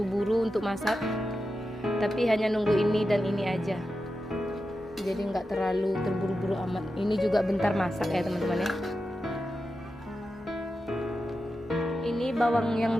untuk masak. Tapi hanya nunggu ini dan ini aja. Jadi nggak terlalu terburu-buru amat. Ini juga bentar masak ya teman-teman ya. Ini bawang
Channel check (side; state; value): both; normal; correlation 0.91